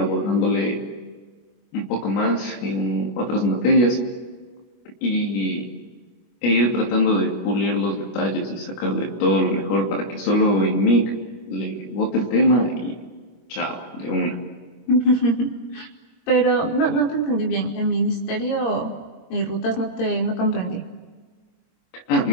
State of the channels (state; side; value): late; right; 24 ms